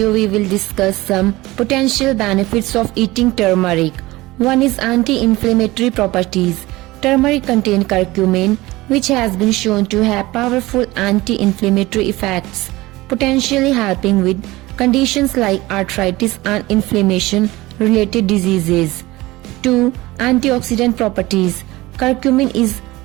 we will discuss some potential benefits of eating turmeric. One is anti-inflammatory properties. Turmeric contains curcumin, which has been shown to have powerful anti-inflammatory effects, potentially helping with conditions like arthritis and inflammation-related diseases. 2. Antioxidant properties. Curcumin is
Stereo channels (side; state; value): left; quieter; 19.6 dB